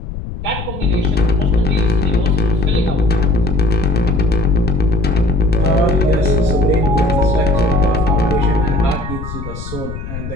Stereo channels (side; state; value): left; noise; rumble, 9 dB below the sound